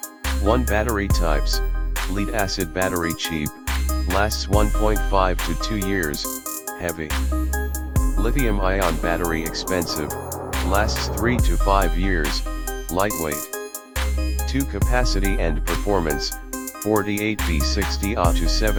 1 Battery types, lead-acid battery cheap, lasts 1.5 to 2 years, heavy. Lithium-ion battery expensive, lasts 3 to 5 years, lightweight. 2 Capacity and performance, 48 V 60 Ah to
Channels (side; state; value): both; identical; correlation 1.00